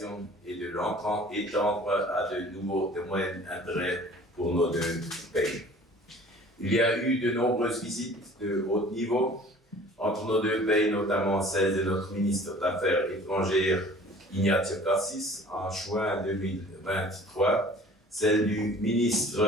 et de l'étendre à de nouveaux domaines d'intérêt pour nos deux pays. Il y a eu de nombreuses visites de haut niveau entre nos deux pays, notamment celle de notre ministre d'Affaires étrangères, Ignazio Cassis, en juin 2023, celle du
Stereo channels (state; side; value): normal; both; correlation 0.48